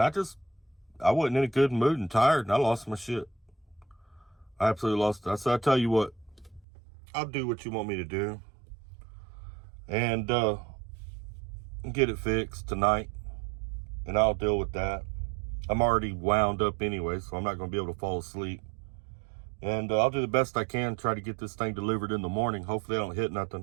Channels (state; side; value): drops out; left; at 6.6 s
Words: I wasn't in a good mood and tired, and I lost my shit. I absolutely lost it. I said, I tell you what, I'll do what you want me to do. And get it fixed tonight. And I'll deal with that. I'm already wound up anyway, so I'm not going to be able to fall asleep. And I'll do the best I can, try to get this thing delivered in the morning. Hopefully I don't hit